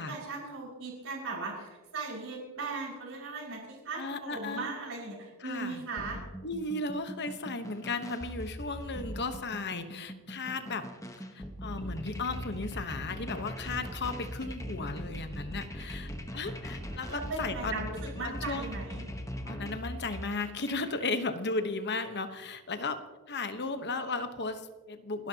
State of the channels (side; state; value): both; normal; correlation 0.19